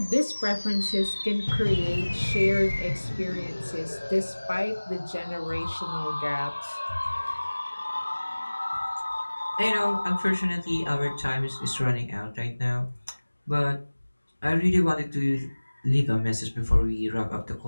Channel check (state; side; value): inverted; both; correlation -1.00